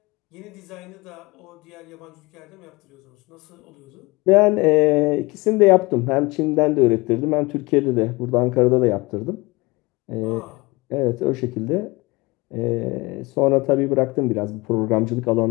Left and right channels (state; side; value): quieter; right; 23.6 dB